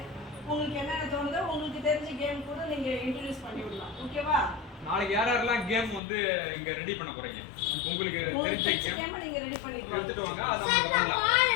உங்களுக்கு என்னென்ன தோணுதோ உங்களுக்கு தெரிஞ்ச கேம் கூட நீங்க இன்ட்ரடியூஸ் பண்ணி விடலாம். ஓகேவா? நாளைக்கு யாரெல்லாம் கேம் வந்து இங்க ரெடி பண்ண போறீங்க? உங்களுக்கு தெரிஞ்ச கேம் நீங்க ரெடி பண்ணிக்கலாம். எடுத்துட்டு வாங்க. அத நம்ம பண்ணலாம்.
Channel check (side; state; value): right; drops out; at 6.0 s